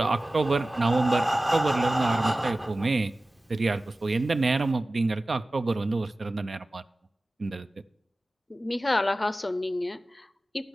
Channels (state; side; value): normal; both; correlation 0.97